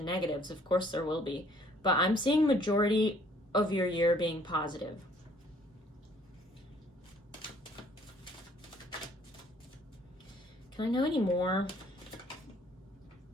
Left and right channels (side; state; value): both; normal; correlation 0.60